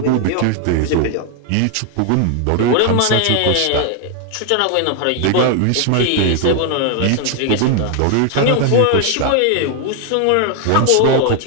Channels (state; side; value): different; both; correlation 0.01